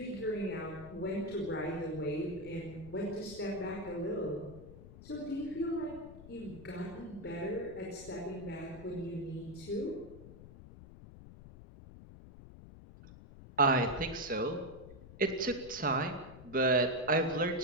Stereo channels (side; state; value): left; noise; rumble, 16 dB below the sound